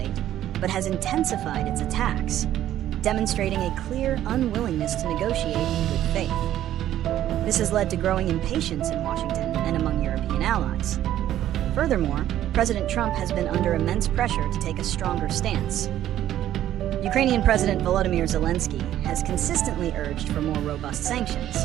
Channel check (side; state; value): left; quieter; 12.2 dB